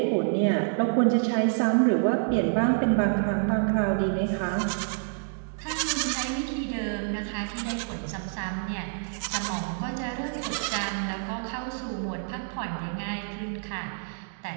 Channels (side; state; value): left; silent; digital silence